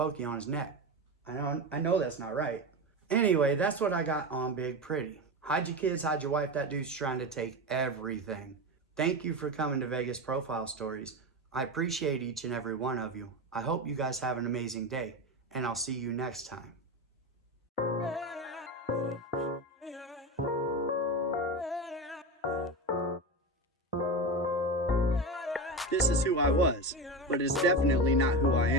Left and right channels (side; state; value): both; normal; correlation 0.20